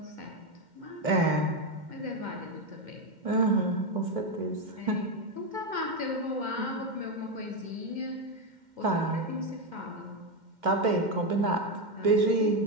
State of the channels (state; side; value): late; left; 2.1 ms